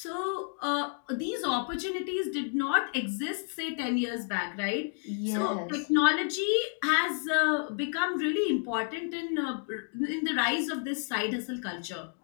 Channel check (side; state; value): right; silent; 57 dB below the other